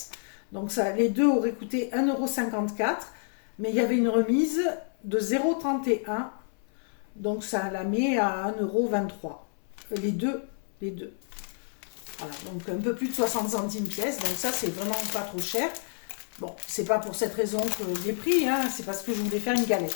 Donc, ça, les deux auraient coûté 1,54 €. Mais il y avait une remise de 0,31 €. Donc, ça la met à 1,23 €. Les deux. Voilà, donc un peu plus de 60 centimes pièce. Donc, ça, c'est vraiment pas trop cher. Bon, c'est pas pour cette raison que j'ai pris, hein, c'est parce que je voulais faire une galette.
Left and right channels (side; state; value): right; silent; 59 dB below the other